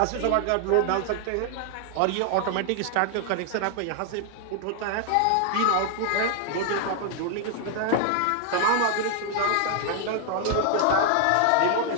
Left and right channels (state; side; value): different; both; correlation 0.00